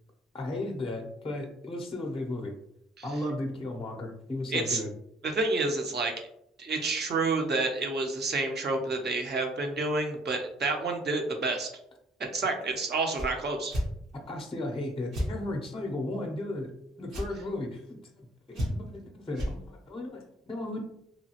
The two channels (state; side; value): normal; both; correlation 0.59